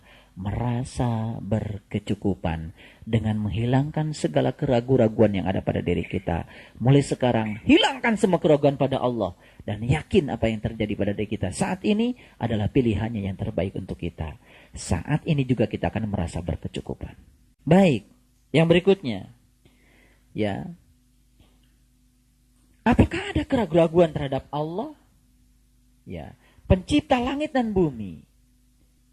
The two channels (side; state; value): both; identical; correlation 1.00